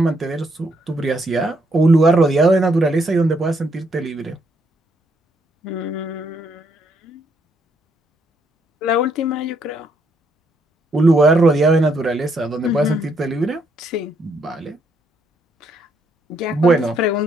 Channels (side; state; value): both; normal; correlation 0.73